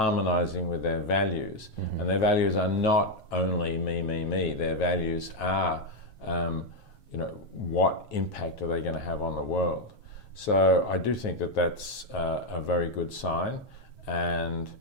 with their values. Mm-hmm. And their values are not only me. Their values are, what impact are they going to have on the world? So I do think that that's a very good sign, and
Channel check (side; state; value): right; late; 7.4 ms